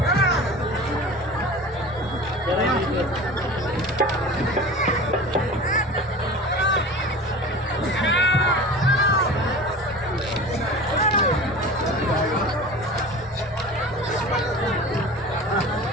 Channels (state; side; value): normal; both; correlation 0.36